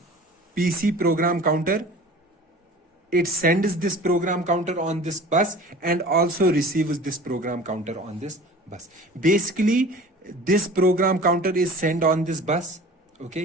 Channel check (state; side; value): normal; both; correlation 0.42